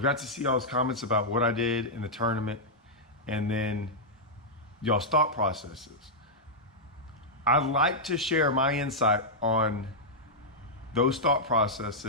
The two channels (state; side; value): normal; both; correlation -0.07